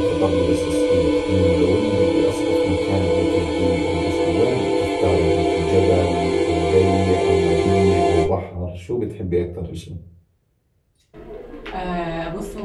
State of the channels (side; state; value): both; identical; correlation 1.00